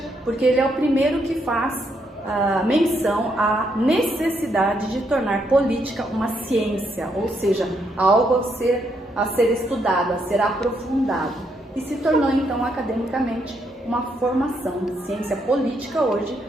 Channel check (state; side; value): normal; both; correlation 0.76